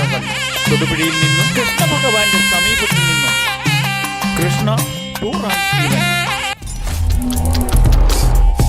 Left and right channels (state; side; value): identical; both; correlation 1.00